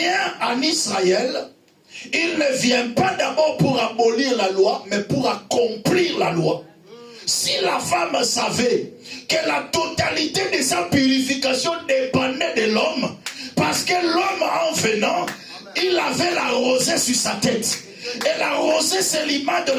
en Israël, il ne vient pas d'abord pour abolir la loi, mais pour accomplir la loi. Si la femme savait que la totalité de sa purification dépendait de l'homme, parce que l'homme en venant, il avait la rosée sur sa tête. Et la rosée, c'est l'image de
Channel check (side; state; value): both; identical; correlation 1.00